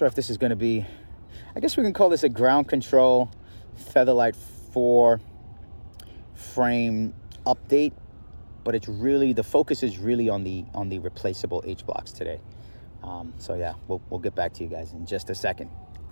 if this is going to be, I guess we can call this a ground control Featherlight 4 frame update, but it's really, the focus is really on the replaceable H-blocks today. So yeah, we'll get back to you guys in just a second.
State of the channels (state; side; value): inverted; both; correlation -1.00